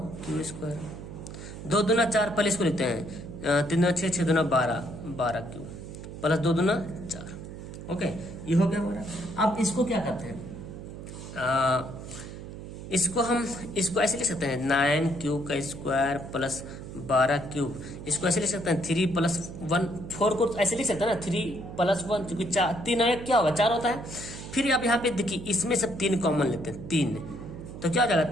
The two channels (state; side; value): noise; right; hum, 11 dB below the sound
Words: q स्क्वायर, 2 दूना 4, पहले इसको लिखते हैं, 3 दूना 6, 6 दूना 12, 12q प्लस 2 दूना 4। ओके, ये हो गया हमारा। अब इसको क्या करते हैं, इसको ऐसे लिख सकते हैं 9q का स्क्वायर प्लस 12q, इसको ऐसे लिख सकते हैं 3 प्लस 1, 4 को ऐसे लिख सकते हैं ना, 3 प्लस 1, क्योंकि 3 और 1 क्या होगा 4 होता है। फिर अब यहाँ पे देखिए इसमें सब 3 कॉमन लेते हैं, 3, तो क्या हो जाएगा